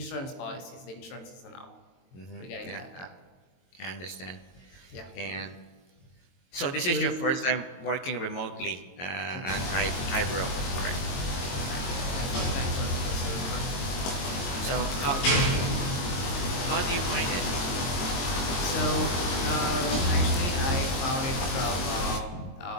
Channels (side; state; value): right; late; 22 ms